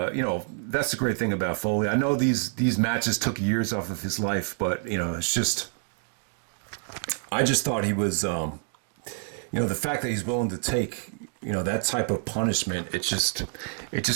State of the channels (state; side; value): silent; left; digital silence